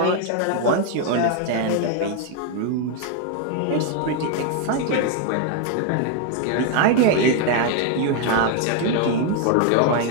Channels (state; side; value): different; both; correlation 0.01